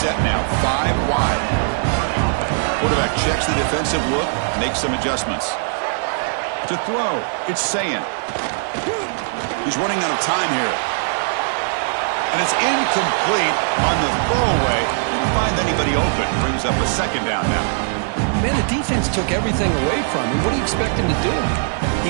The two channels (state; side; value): silent; left; 66 dB below the other